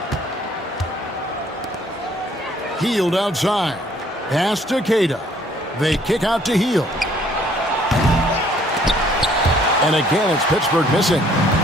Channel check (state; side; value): normal; both; correlation 0.61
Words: Hield outside. Pass to Queta. They kick out to Hield. And again, it's Pittsburgh missing.